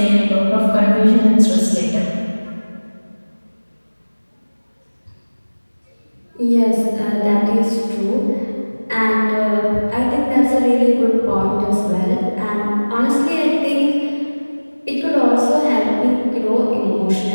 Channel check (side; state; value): both; inverted; correlation -1.00